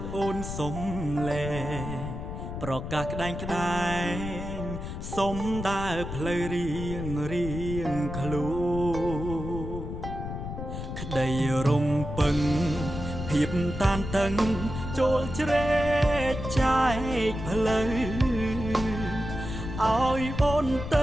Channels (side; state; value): left; noise; rumble, 7 dB below the sound